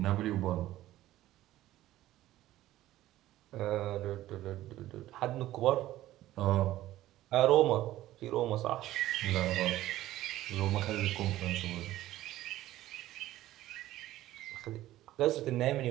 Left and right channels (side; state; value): left; quieter; 14.9 dB